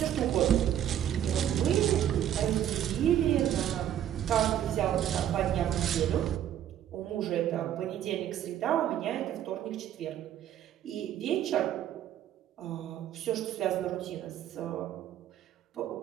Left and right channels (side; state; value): left; quieter; 10.9 dB